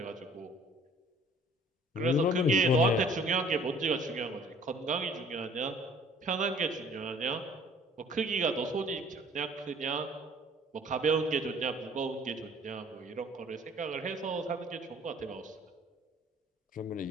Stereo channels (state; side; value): normal; both; correlation 0.54